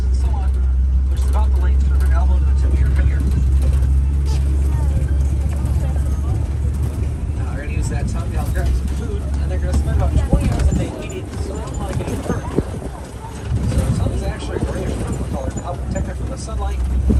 and so on, which is about the length from their elbow to the tip of your finger. Now they're going to use that tongue to help grab some food, and they're going to spend about 20 hours a day eating, so they don't want to get hurt. So their tongue is actually a grayish purple color to help protect it from the sunlight,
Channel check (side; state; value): both; identical; correlation 1.00